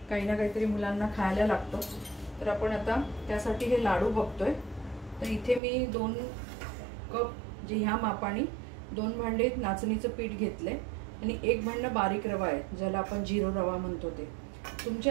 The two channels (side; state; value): left; drops out; at 5.6 s